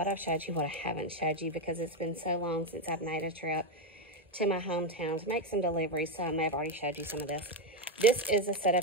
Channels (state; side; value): normal; both; correlation 0.08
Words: I've showed you, what I haven't showed you, because it's been so long since I've made a trip to my hometown to make some deliveries, so I may have already showed you some of this. This is a set